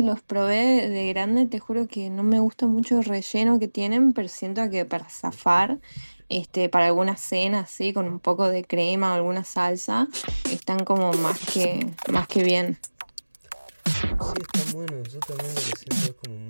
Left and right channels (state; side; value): inverted; both; correlation -1.00